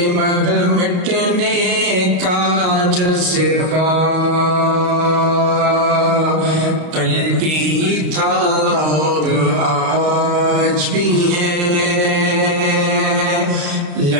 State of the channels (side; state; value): left; late; 33 ms